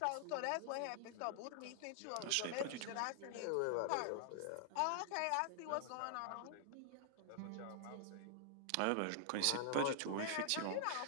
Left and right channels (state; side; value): different; both; correlation -0.01